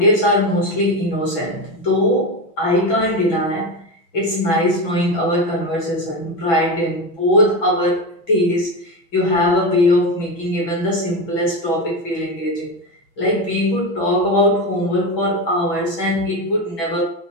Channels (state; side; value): late; right; 6.0 ms